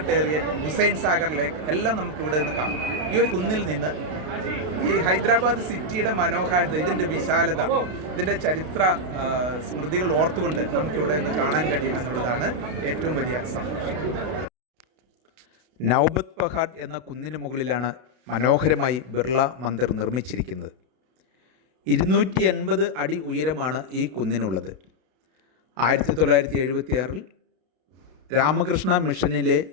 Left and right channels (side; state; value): left; late; 32 ms